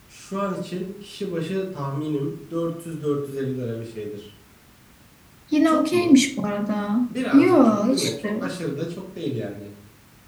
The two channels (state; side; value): identical; both; correlation 1.00